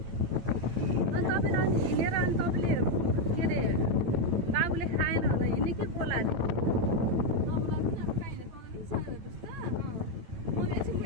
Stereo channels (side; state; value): left; late; 9.0 ms